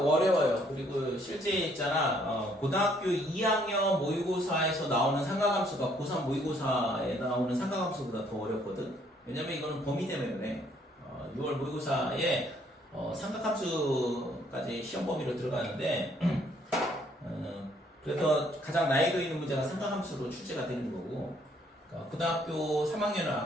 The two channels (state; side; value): normal; both; correlation 0.66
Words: 어려워요. 그리고 실제 있잖아 고등학교 2학년 모의고사에서 나오는 삼각함수가 고3 모의고사에 나오는 삼각함수보다 더 어렵거든. 왜냐면 이거는 범위 때문에 그래. 6월 모의고사에 삼각함수까지 시험 범위로 들어가는데 그래서 가장 난이도 있는 문제가 삼각함수로 출제가 되는 거고, 그러니까 고등학교 3학년은